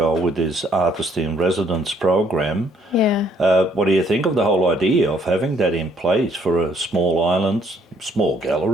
with this Artist in Residence program. Yeah. What do you think of the whole idea of having that in place for a small island, small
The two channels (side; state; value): both; normal; correlation 0.66